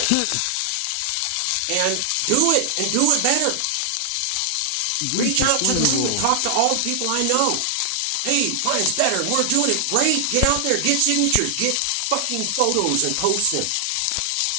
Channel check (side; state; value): both; different; correlation 0.00